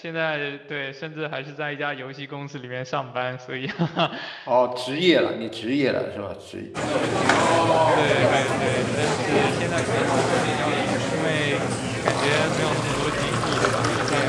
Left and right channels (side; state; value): both; identical; correlation 1.00